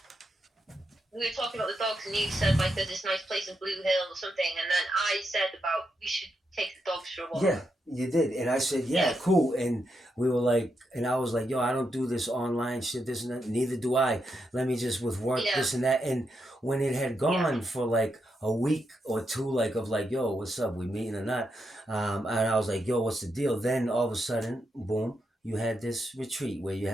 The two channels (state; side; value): normal; both; correlation 0.83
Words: we were talking about the dogs, and you said like there's this nice place in Blue Hill or something, and then I said about we should take the dogs for a walk. Yeah, you did, and I said, yeah, cool, and we were like, and I was like, yo, I don't do this online shit, this and that. Neither do I. Let me just with work this and that. And when it had gone for like a week or two, like of like, yo, what's up? We meeting or not? And I was like, yo, what's the deal? Then all of a sudden, boom. You had this retreat where you